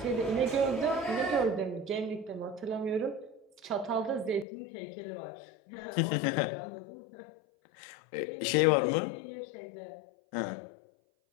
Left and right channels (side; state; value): right; drops out; at 4.5 s